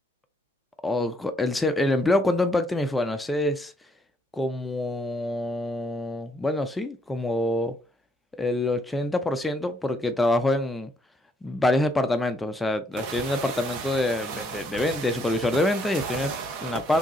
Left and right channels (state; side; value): normal; both; correlation 0.70